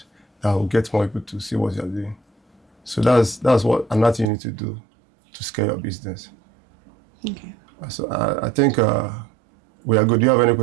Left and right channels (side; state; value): left; drops out; at 4.3 s